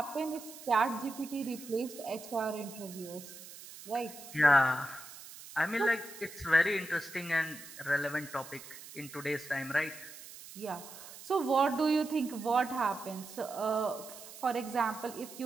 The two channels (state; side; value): noise; right; hiss, 15 dB below the sound